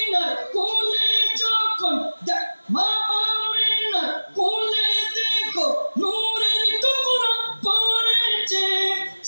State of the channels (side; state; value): both; inverted; correlation -1.00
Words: কোলে যখন, মা আমিনার কোলে দেখো নূরের টুকরা পড়েছে,